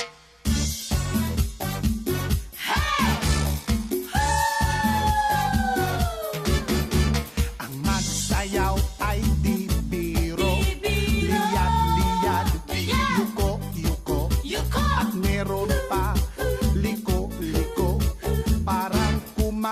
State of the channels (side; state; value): both; identical; correlation 1.00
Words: Ang magsayaw ay di biro, liyad-liyad, yuko-yuko, at meron pa liko-liko, parang